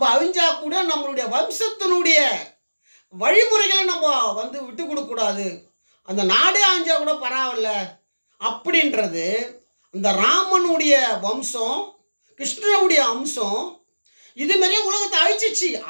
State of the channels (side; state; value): both; inverted; correlation -1.00